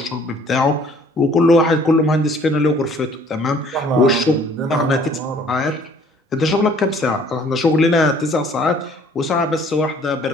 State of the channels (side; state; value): both; normal; correlation 0.56